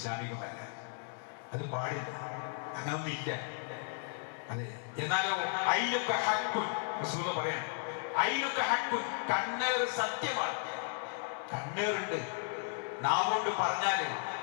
അത് പാടില്ല, അങ്ങനൊന്നും ഇല്ല. അതെ, എന്നാലോ അയിലൊക്കെ ഹക്കുൻ റസൂൽ പറയാണ്, അയിലൊക്കെ ഹക്കുൻ, കണ്ണേർ സത്യമാണ്. കണ്ണേറുണ്ട്. നാവുകൊണ്ട് പറഞ്ഞാല്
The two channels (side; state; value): right; silent; 54 dB below the other